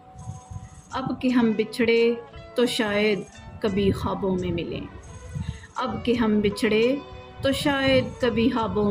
اب کہ ہم بچھڑے تو شاید کبھی خوابوں میں ملیں، اب کہ ہم بچھڑے تو شاید کبھی خوابوں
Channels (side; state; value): both; identical; correlation 1.00